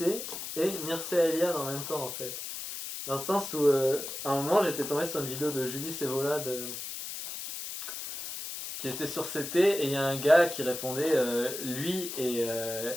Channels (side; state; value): left; noise; hiss, 7 dB below the sound